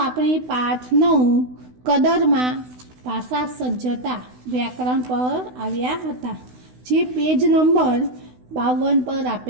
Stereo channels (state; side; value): late; left; 16 ms